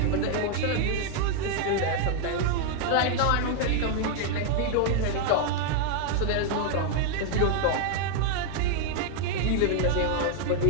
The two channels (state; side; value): different; both; correlation 0.00